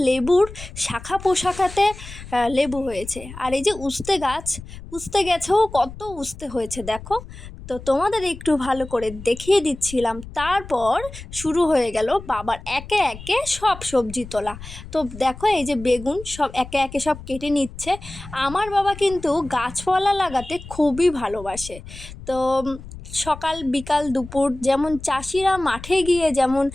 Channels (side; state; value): left; noise; rumble, 14 dB below the sound